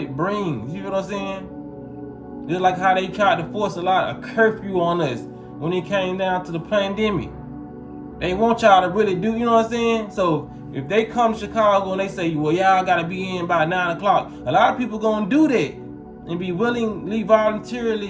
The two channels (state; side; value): identical; both; correlation 1.00